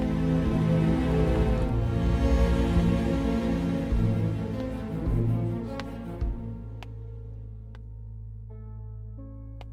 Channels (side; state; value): both; identical; correlation 1.00